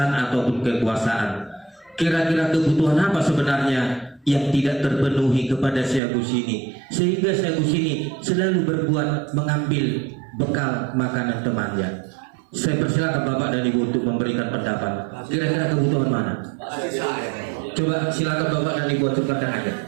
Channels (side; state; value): left; drops out; at 6.0 s